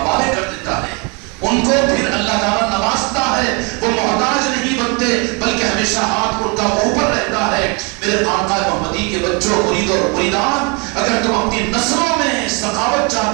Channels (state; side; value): quieter; left; 31.7 dB